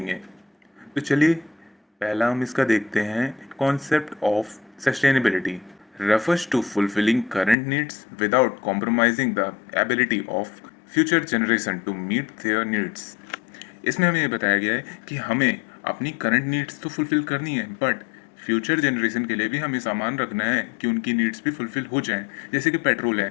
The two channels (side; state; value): right; drops out; at 7.6 s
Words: तो चलिए पहला हम इसका देखते हैं। Concept of sustainability refers to fulfilling current needs without compromising the ability of future generation to meet their needs। इसमें हमें ये बताया गया है कि हमें अपनी करंट नीड्स तो फुलफिल करनी है, बट फ्यूचर जनरेशन के लिए भी हमें सामान रखना है कि उनकी नीड्स भी फुलफिल हो जाएं। जैसे कि पेट्रोल